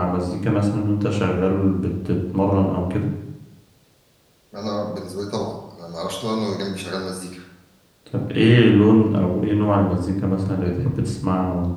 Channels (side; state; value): both; identical; correlation 1.00